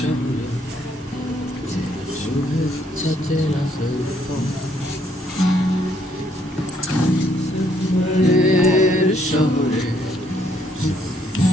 শুভেচ্ছা চেনা সুফল শহরে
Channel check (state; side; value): normal; both; correlation 0.69